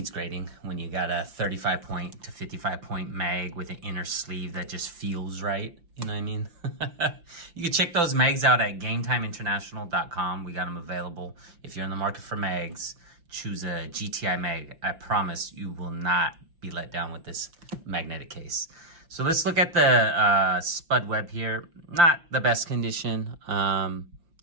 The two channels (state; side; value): late; left; 5.7 ms